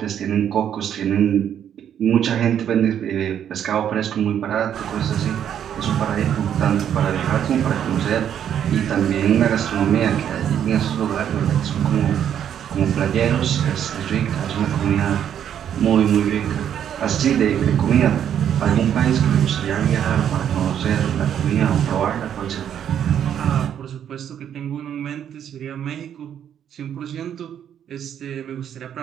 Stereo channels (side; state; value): left; quieter; 9.4 dB